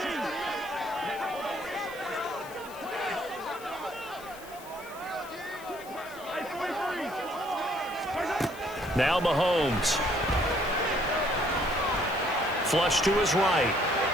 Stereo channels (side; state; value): left; noise; hiss, 19 dB below the sound